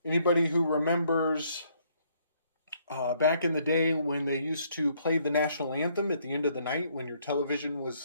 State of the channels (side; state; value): both; inverted; correlation -0.68